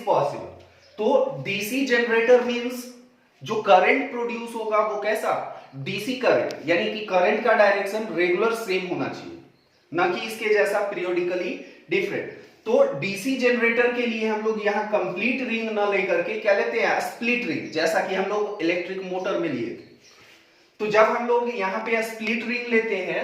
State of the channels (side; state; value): both; identical; correlation 1.00